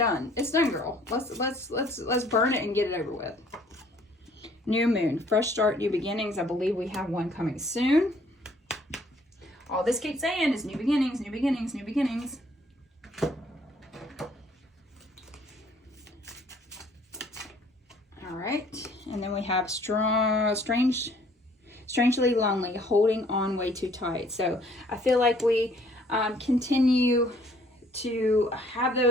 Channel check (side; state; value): both; normal; correlation 0.60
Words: It's done, girl. Let's burn it and get it over with. New moon, fresh start, new beginnings. I believe we have one coming soon. All this keeps saying is new beginnings, new beginnings, new beginnings. All right, and then we have strangely lonely, holding on way too tight. So I feel like we continue to have